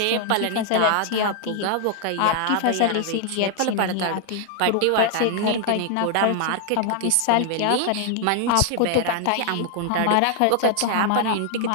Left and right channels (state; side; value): different; both; correlation 0.00